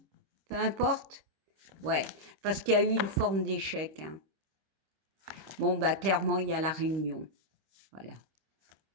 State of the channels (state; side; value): late; left; 26 ms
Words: peu importe. Ouais, parce qu'il y a eu une forme d'échec, hein. Bon, bah clairement, il y a la réunion. Voilà.